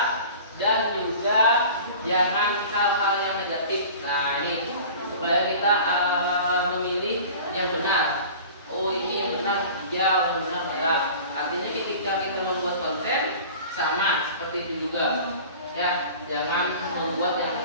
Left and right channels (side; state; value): both; inverted; correlation -0.41